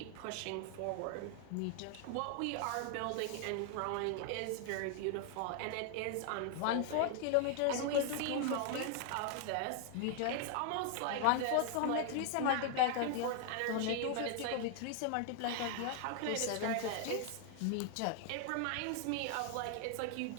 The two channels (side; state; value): both; different; correlation 0.00